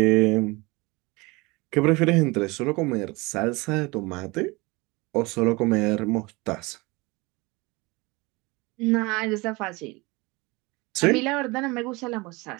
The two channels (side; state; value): left; quieter; 24.5 dB